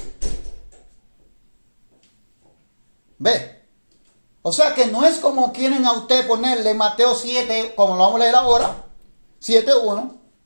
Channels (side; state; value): both; inverted; correlation -1.00